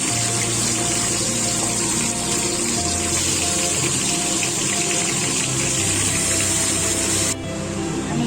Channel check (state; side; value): identical; both; correlation 1.00